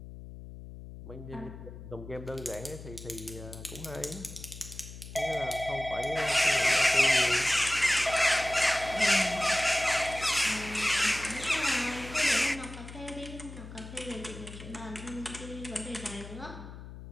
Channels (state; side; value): noise; left; hum, 13 dB below the sound